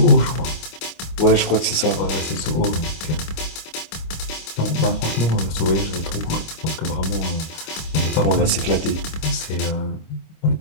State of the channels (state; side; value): late; right; 25 ms